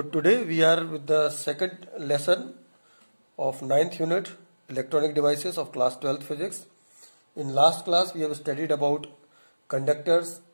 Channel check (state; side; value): inverted; both; correlation -1.00